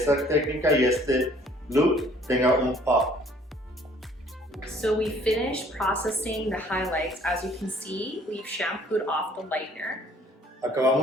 técnica y este look tenga un pop. So we finished processing the highlights. As you can see, we've shampooed off the lightener.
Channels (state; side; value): normal; both; correlation 0.59